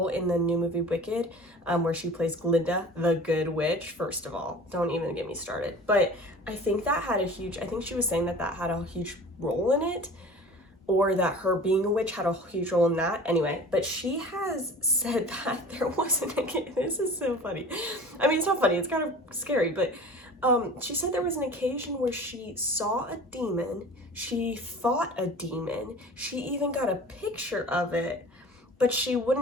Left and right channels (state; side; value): normal; both; correlation 0.41